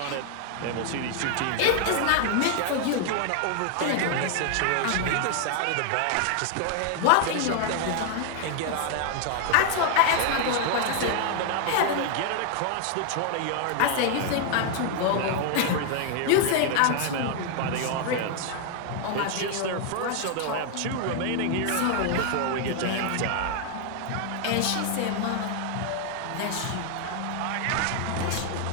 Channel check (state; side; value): different; both; correlation 0.00